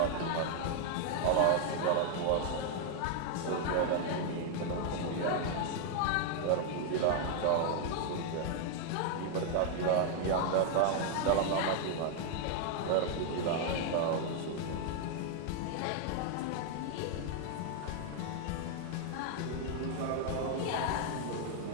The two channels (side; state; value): both; different; correlation 0.00